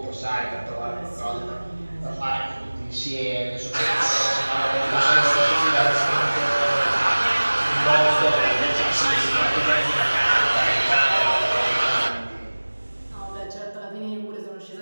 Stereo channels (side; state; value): both; inverted; correlation -1.00